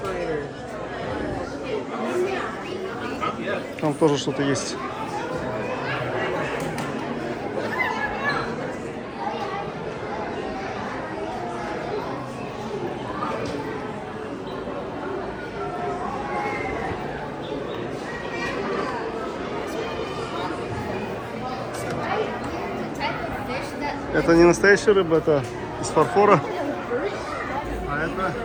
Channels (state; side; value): identical; both; correlation 1.00